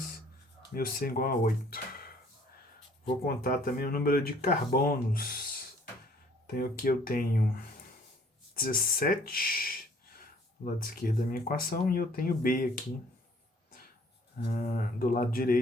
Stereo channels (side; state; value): both; normal; correlation 0.59